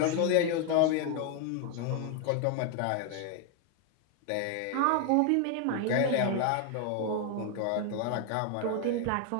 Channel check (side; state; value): both; different; correlation 0.01